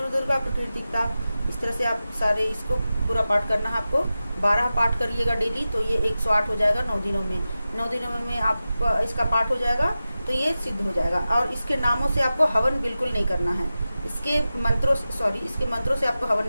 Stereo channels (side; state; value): both; inverted; correlation -0.94